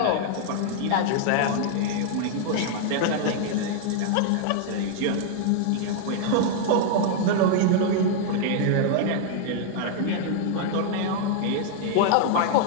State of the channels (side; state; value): both; different; correlation -0.01